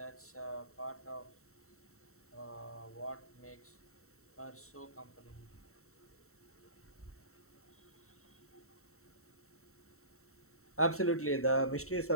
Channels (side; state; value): right; late; 0.63 ms